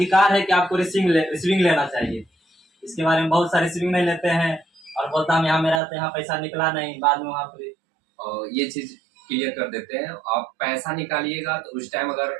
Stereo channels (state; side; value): drops out; left; at 5.8 s